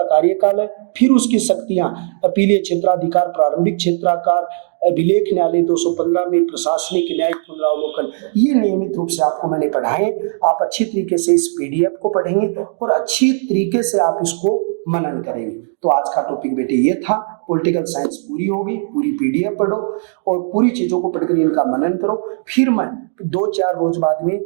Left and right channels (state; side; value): silent; left; digital silence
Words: कार्यकाल है, फिर उसकी शक्तियां अपीलीय क्षेत्राधिकार, प्रारंभिक क्षेत्राधिकार, अभिलेख न्यायालय 215 में प्रशासनिक न्यायिक पुनरावलोकन, ये नियमित रूप से आपको मैंने पढ़ाए। आप अच्छी तरीके से इस पीडीएफ को पढ़ेंगे और अच्छी तरीके से आप इसको मनन करेंगे। तो आज का टॉपिक बेटे ये था, पॉलिटिकल साइंस पूरी होगी, पूरी पीडीएफ पढ़ो और पूरी चीजों को पढ़कर इनका मनन करो। फिर मैं 2-4 रोज बाद में